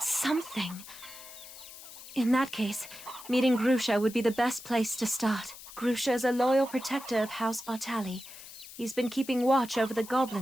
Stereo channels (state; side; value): noise; left; hiss, 15 dB below the sound